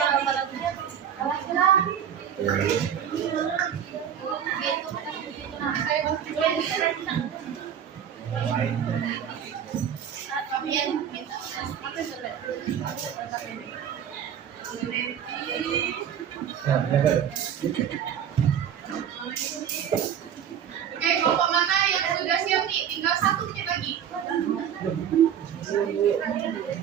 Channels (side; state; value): left; quieter; 8.9 dB